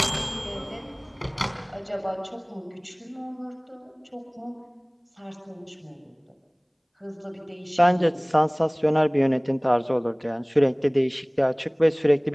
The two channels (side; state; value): both; identical; correlation 1.00